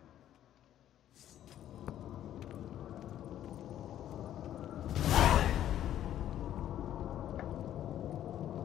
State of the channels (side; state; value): right; quieter; 11.6 dB